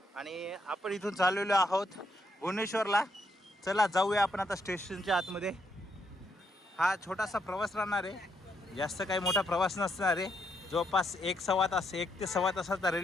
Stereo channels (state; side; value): normal; both; correlation 0.76